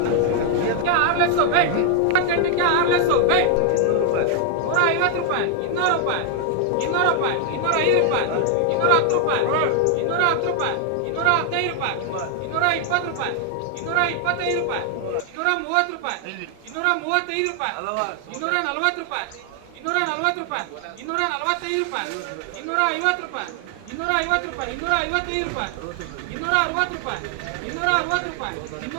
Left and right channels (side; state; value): both; different; correlation 0.00